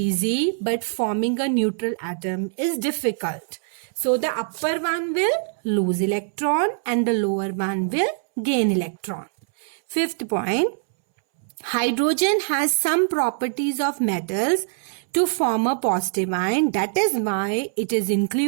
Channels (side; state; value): left; silent; 63 dB below the other